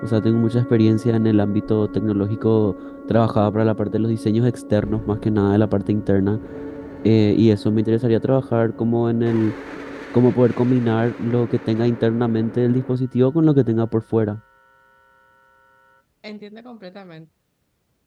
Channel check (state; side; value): identical; both; correlation 1.00